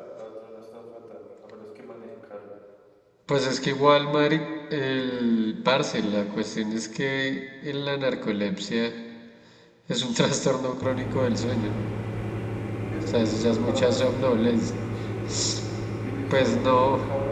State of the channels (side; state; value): both; identical; correlation 1.00